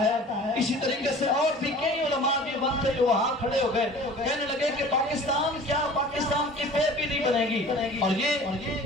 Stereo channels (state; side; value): normal; both; correlation 0.44